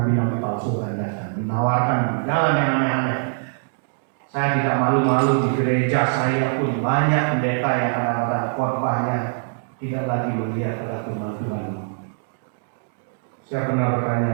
palsu yang datang menawarkan jalan yang aneh-aneh. Saya tidak malu-malu di gereja saya pun banyak pendeta yang kadang-kadang khotbahnya tidak lagi melihat pada firman Tuhan. Saya pernah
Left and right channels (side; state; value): left; silent; digital silence